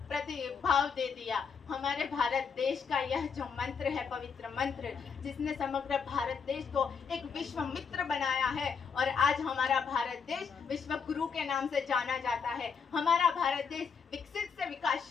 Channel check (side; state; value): right; quieter; 6.1 dB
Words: दे दिया। हमारे भारत देश का यह जो मंत्र है, पवित्र मंत्र, जिसने समग्र भारत देश को एक विश्व मित्र बनाया है और आज हमारा भारत देश विश्व गुरु के नाम से जाना जाता है। हमारा भारत देश विकसित से